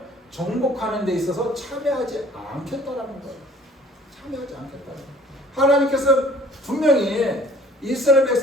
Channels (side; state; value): both; normal; correlation 0.53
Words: 정복하는 데 있어서 참여하지 않겠다라는 거예요. 참여하지 않겠다는 거예요. 하나님께서 분명히 이스라엘